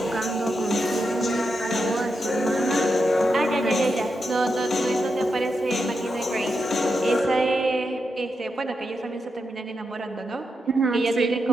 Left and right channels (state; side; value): normal; both; correlation 0.86